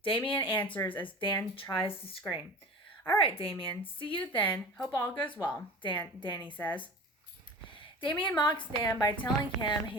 Damien answers as Dan tries to scream. All right, Damien. See you then. Hope all goes well, Danny says. Damien mocks Dan by telling him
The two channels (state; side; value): normal; both; correlation 0.36